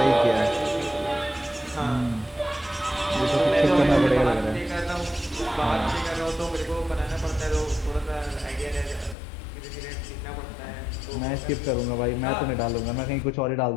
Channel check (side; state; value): right; drops out; at 9.2 s